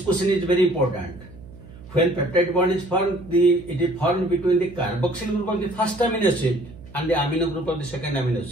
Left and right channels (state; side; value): noise; right; hum, 19 dB below the sound